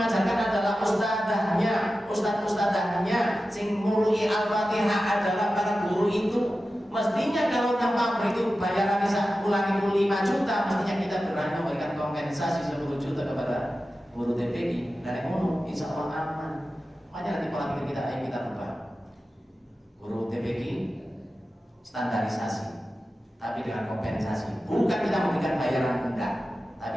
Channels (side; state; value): both; normal; correlation 0.94